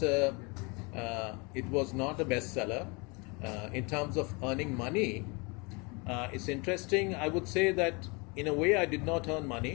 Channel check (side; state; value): right; quieter; 29.8 dB